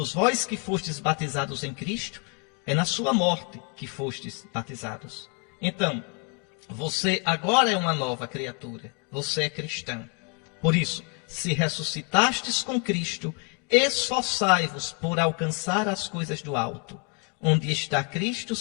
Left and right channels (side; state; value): right; quieter; 36.2 dB